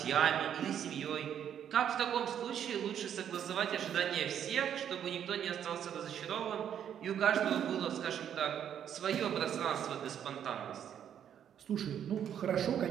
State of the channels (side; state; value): left; quieter; 9.3 dB